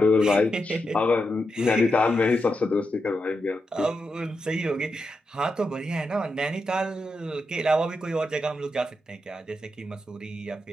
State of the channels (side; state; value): both; normal; correlation 0.86